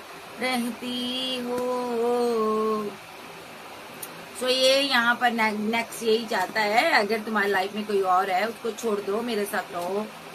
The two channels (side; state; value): both; identical; correlation 1.00